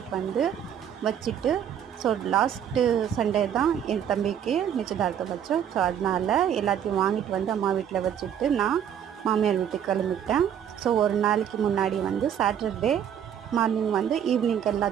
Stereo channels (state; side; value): quieter; left; 9.2 dB